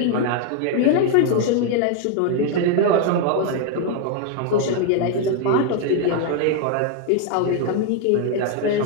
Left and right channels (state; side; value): different; both; correlation 0.00